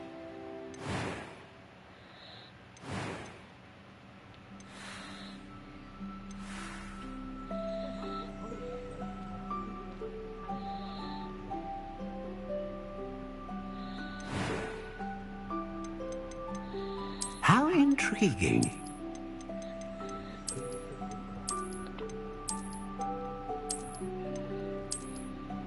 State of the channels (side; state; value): both; identical; correlation 1.00